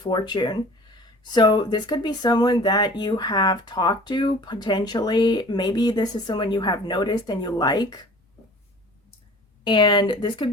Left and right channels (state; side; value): normal; both; correlation 0.46